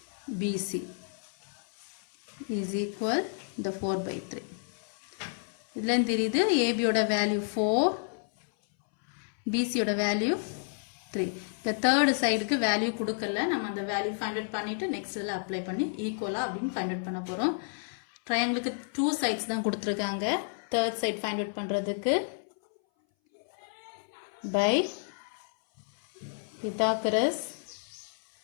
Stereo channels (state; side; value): silent; right; 57 dB below the other